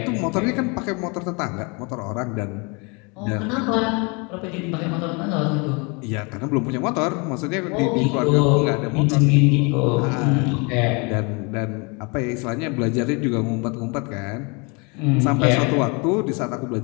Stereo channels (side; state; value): right; quieter; 30.8 dB